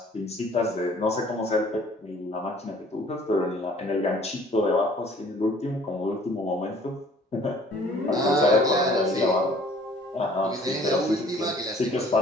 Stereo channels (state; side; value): normal; both; correlation 0.55